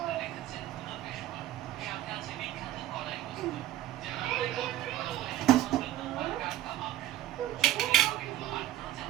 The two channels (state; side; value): quieter; left; 13.7 dB